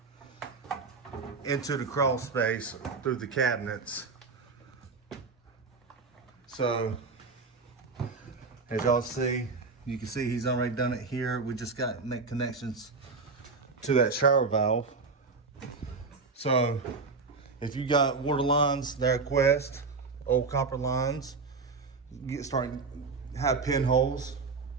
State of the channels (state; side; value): quieter; left; 4.3 dB